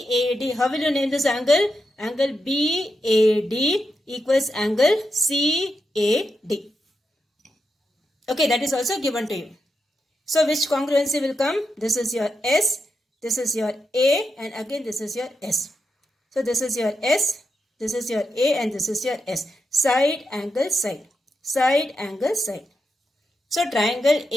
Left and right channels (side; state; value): both; normal; correlation 0.87